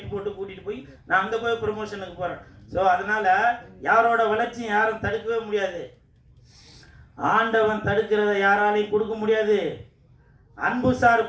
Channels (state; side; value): identical; both; correlation 1.00